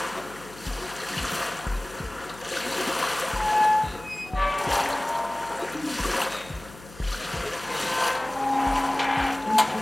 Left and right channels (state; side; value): noise; left; hum, 20 dB below the sound